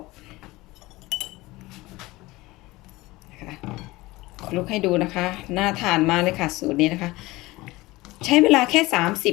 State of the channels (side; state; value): right; quieter; 20.2 dB